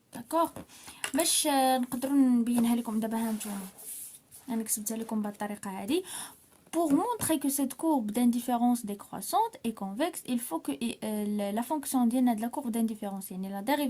داكوغ باش نقدروا نبينها لكم دابا. ها نتوما انا كتبتها لكم بهالطريقه هذه. Pour montrer que cette courbe d'indifférence décroissante est convexe, il faut que la fonction ديالنا de la courbe d'indifférence يعني la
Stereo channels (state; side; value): identical; both; correlation 1.00